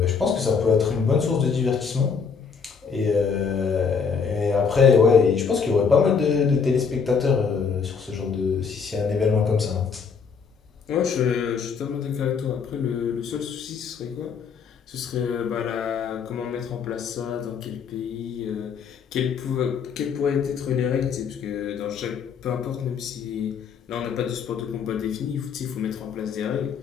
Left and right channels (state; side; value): quieter; right; 6.0 dB